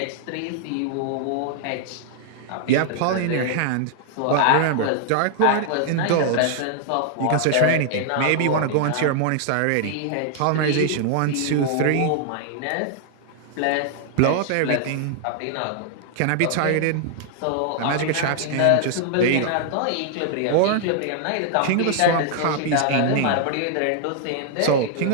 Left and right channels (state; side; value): different; both; correlation 0.00